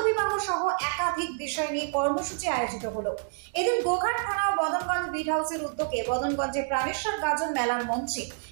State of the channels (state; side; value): silent; left; digital silence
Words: বিবাহ সহ একাধিক বিষয় নিয়ে কর্মসূচি আয়োজিত হলো। এদিন গোঘাট থানা ও মদনগঞ্জ বিট হাউসের উদ্যোগে মদনগঞ্জে প্রাণেশ্বর গাজন মেলার মঞ্চে